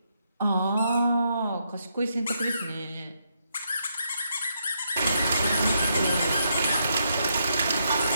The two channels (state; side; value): inverted; both; correlation -0.78